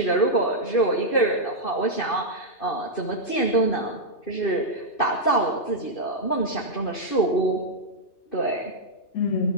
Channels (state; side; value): late; right; 2.8 ms